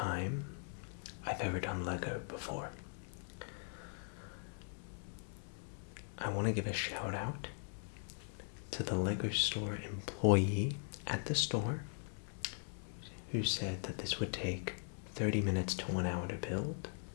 I've ever done Lego before. I want to give a shout out to the Lego store employee at the store who said that this would take 30 minutes to 1 hour to build.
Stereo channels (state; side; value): silent; right; digital silence